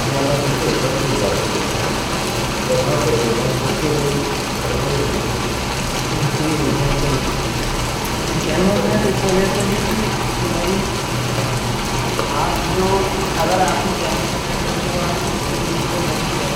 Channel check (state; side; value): identical; both; correlation 1.00